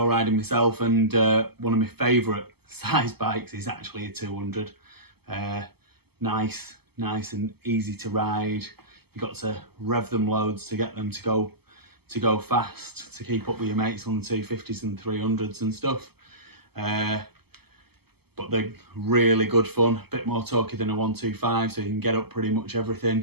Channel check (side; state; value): left; late; 0.96 ms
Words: riding myself, and one of my favourite size bikes is actually a 200. Nice and easy to ride. You got to rev them loads to get them to go fast, to keep up with your mates on the 250s and 300s and stuff. But they're really good fun, a bit more torquey than a 125, so you can get up pretty much